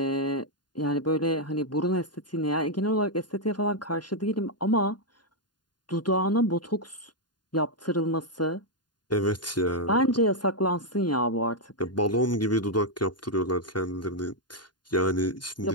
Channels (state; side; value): late; right; 0.70 ms